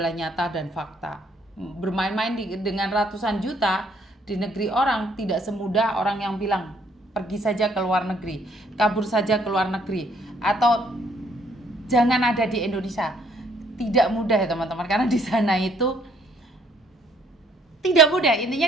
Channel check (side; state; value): both; normal; correlation 0.65